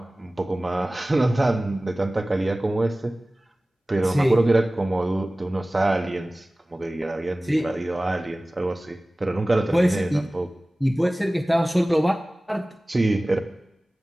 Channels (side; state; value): both; normal; correlation 0.98